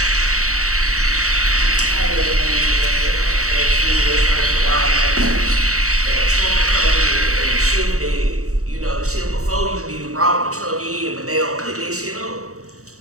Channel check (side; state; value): left; late; 0.65 ms